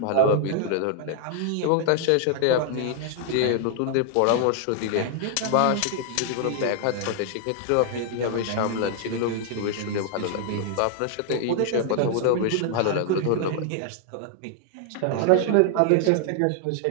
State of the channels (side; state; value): both; different; correlation 0.00